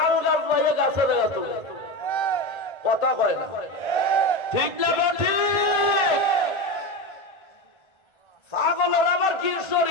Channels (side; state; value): right; late; 1.3 ms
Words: গাছ পাইয়ে গাছে লাগাত, কথা কয় না, ঠিক না? ঠিক। পাগলের আবার কি